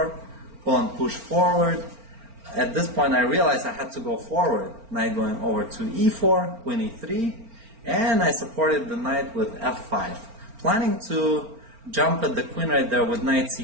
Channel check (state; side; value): late; left; 4.4 ms